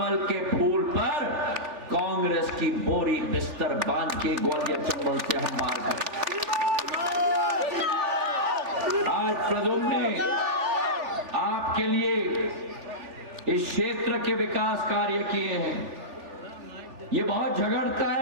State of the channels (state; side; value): late; left; 3.4 ms